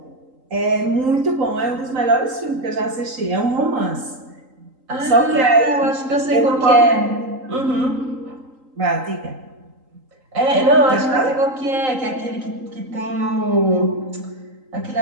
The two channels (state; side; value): late; left; 3.8 ms